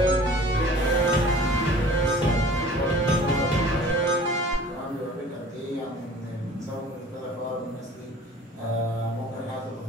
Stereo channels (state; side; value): normal; both; correlation 0.47